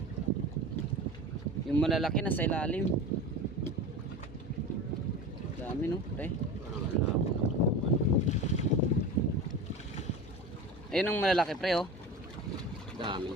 Yung malalaki nasa ilalim. Dami no, pre. Ayun ang malalaki pre oh.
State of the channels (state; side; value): normal; both; correlation 0.31